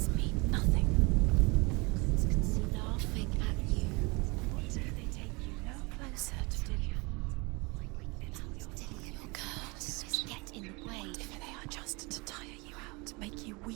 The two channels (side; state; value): left; quieter; 27.3 dB